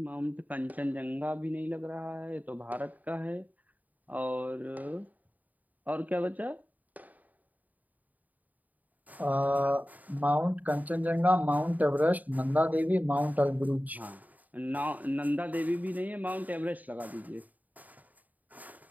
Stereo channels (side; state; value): left; late; 0.078 ms